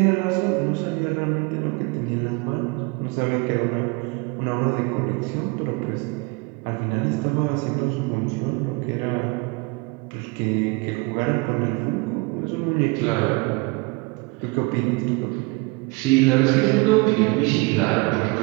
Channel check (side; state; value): left; quieter; 26.9 dB